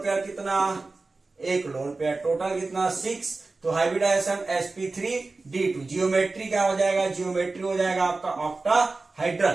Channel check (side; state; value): left; quieter; 3.6 dB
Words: कितना, एक लोन पेयर, टोटल कितना 6, तो हाइब्रिडाइजेशन sp3d2। जियोमेट्री क्या हो जाएगा, जियोमेट्री हो जाएगा आपका